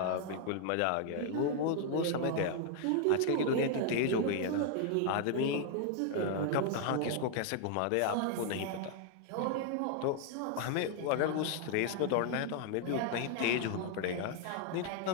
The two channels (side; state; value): both; different; correlation 0.00